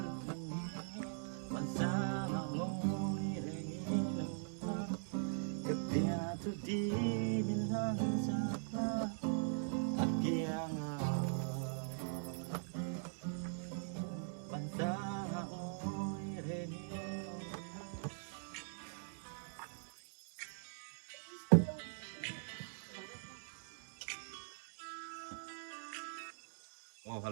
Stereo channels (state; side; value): silent; left; digital silence